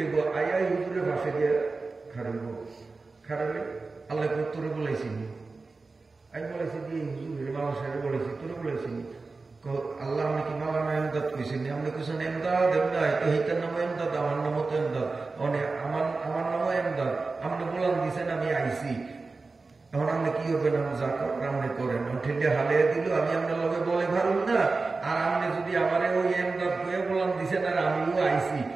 আই হুজুরের ভাষে দিয়ে খাড়াইব। খাড়াইলে আল্লাহ তোরে বলেছিনি, আমি বলেছি যে হুজুরের মামা সাহেব বলেছি, তোরে বলেছিনি। আল্লাহ আপনি কি মাওলানা এমদাদ কইছেন? আপনি কইছেন এমদাদ, এমদাদ তো এইটার নামও এমদাদ, আমার নামও তো এমদাদ, আমার নামও এমদাদ। আপনি বলান দিছেন, আমি আইসি। এখন আপনি কি হবে না, যা আপনি করেন। ঠেলে হালিয়ে দিল, আমি আপনার লগে বলে ভারুন না। আর আপনি যদি আমারে ওই এমদাদ কয়ে বলান দিছেন, আর আমিও আইসি,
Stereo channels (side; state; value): left; quieter; 3.9 dB